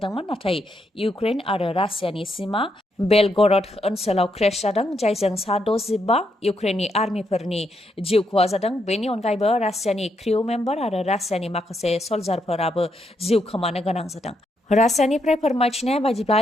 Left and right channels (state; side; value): normal; both; correlation 0.79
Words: नाथाय इउक्रेन आरो रासियानि सीमा बेलगरड ओनसोलाव क्रेश जादों जायजों सा 65 इउक्रेननि आर्मिफोरनि जिउ खहा जादों। बेनि अनगायैबो रासियानि क्रिउ मेम्बार आरो रासियानि माखासे सल्जारफोराबो जिउ खोमानो गोनां जादों। रासियानिफ्राय फोरमायथिनाय बायदिब्ला